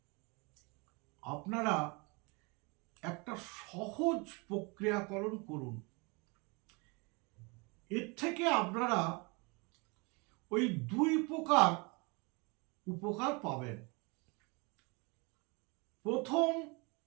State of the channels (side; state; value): left; quieter; 29.4 dB